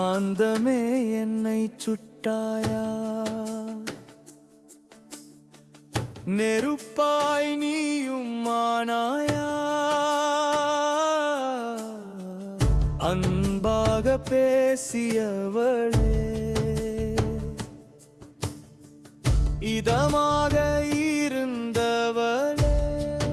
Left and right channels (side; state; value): both; identical; correlation 1.00